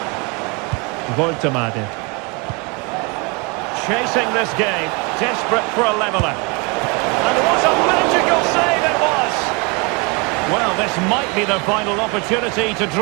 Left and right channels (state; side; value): quieter; left; 30.4 dB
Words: Voltemade. Chasing this game, desperate for a leveller. And what a magical save it was! Well, this might be the final opportunity to